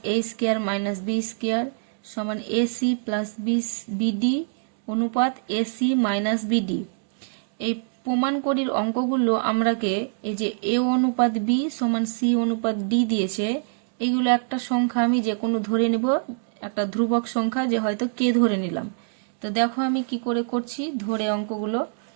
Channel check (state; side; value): silent; left; digital silence